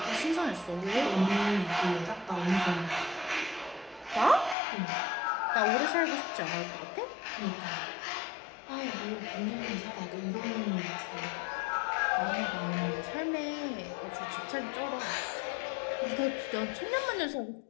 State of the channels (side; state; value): right; drops out; at 4.5 s